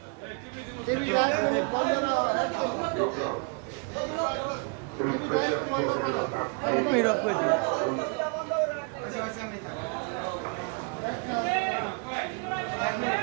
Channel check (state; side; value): quieter; left; 36.4 dB